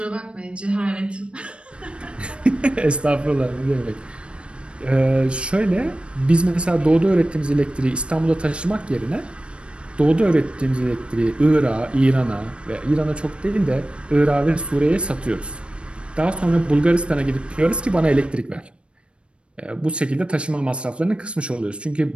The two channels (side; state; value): left; late; 0.058 ms